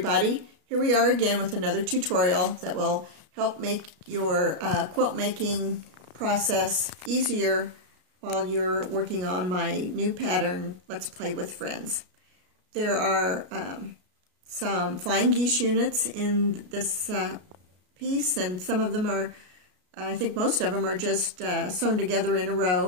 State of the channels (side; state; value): left; late; 33 ms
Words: here we are again with another tutorial that will help make your quilt making process easier while you're working on my new pattern, Let's Play with Friends. There are some flying geese units in this piece, and some of them are, I think most of them are just sewn together in a